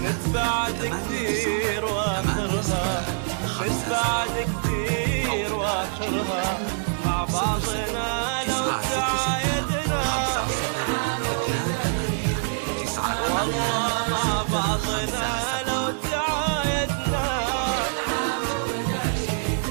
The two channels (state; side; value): silent; left; digital silence